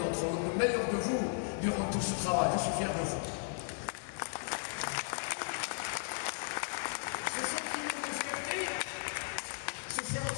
vous, le meilleur de vous durant tout ce travail. Je suis fier de vous.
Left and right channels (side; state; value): right; silent; digital silence